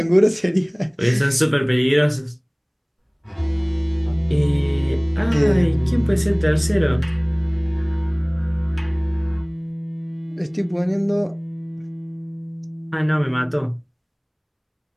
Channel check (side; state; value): both; identical; correlation 1.00